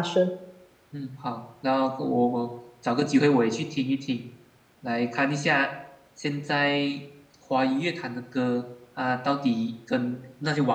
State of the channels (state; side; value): identical; both; correlation 1.00